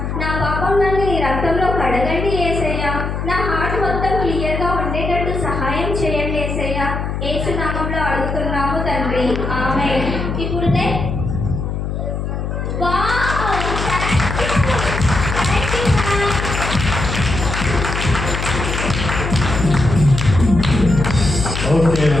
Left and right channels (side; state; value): left; noise; hum, 3 dB below the sound